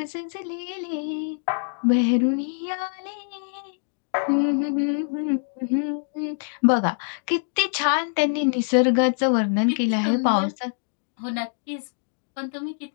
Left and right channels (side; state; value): right; silent; digital silence